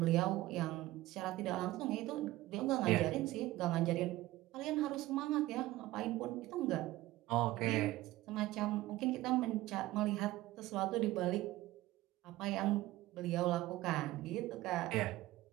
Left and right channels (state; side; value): quieter; left; 17.2 dB